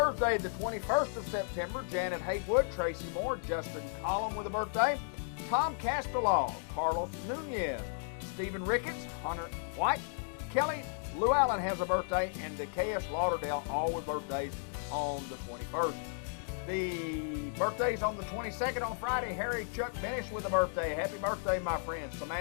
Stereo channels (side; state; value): right; silent; digital silence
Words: the 21st of September, Janet Haywood, Tracy Moore, Justin Collum with a birthday, Tom Castellaw, Carlos Nunez, Stephen Ricketts, Hunter White, Kelly Lou Allen has a birthday, and Decaeus Lauderdale, all with birthdays on the 21st. The birthdays on the 22nd on Friday, Harry Chuck Benish with a birthday. Happy birthday, my friend.